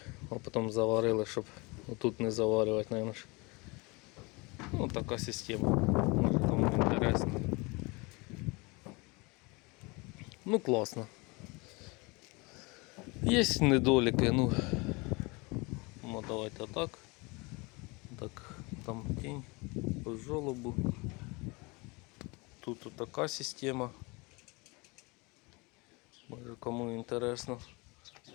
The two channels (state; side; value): quieter; right; 26.8 dB